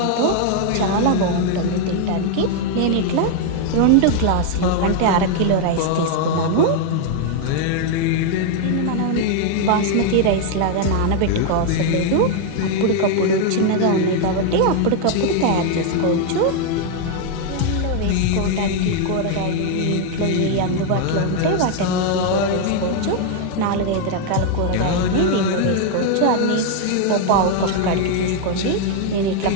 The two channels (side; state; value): both; different; correlation 0.00